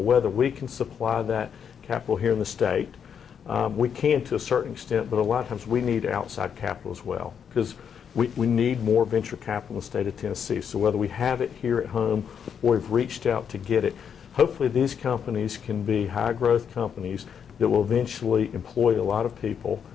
whether we can supply that capital here in the state. We can to a certain extent, but a lot of times we need outside capital as well because we need more venture capital in the state of Tennessee. So whether we have it here at home or we've reached out to get it, hopefully these companies can be high growth companies that will eventually employ a lot of people,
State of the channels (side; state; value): right; quieter; 7.6 dB